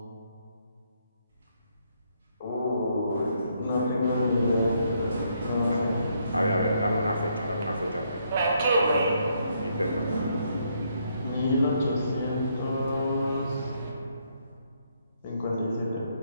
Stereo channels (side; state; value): both; inverted; correlation -0.73